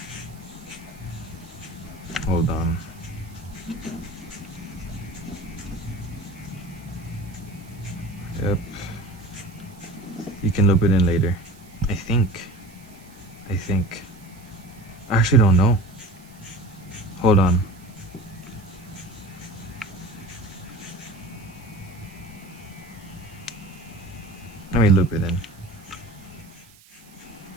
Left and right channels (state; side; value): noise; right; hiss, 25 dB below the sound